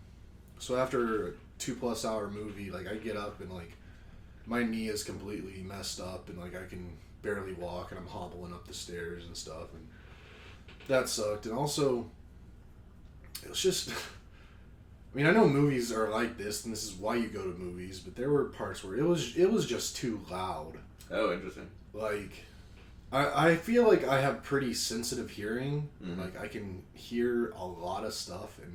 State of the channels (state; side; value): identical; both; correlation 1.00